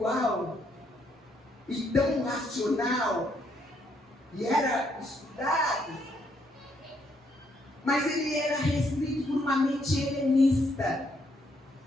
e tão racional, e era estudado, mas ele era restrito por uma mente helenista.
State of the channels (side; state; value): both; normal; correlation 0.73